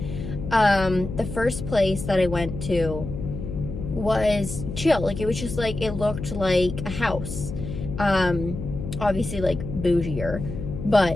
The first place that I went to was chill. Like, it was just, like, it looked like a house. Obviously, like, bougier.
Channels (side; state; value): left; noise; hum, 7 dB below the sound